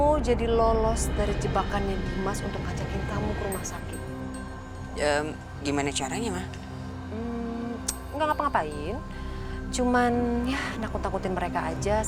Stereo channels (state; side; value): identical; both; correlation 1.00